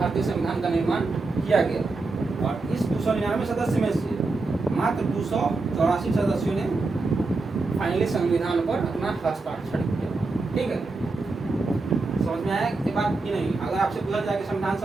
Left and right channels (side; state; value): left; quieter; 3.6 dB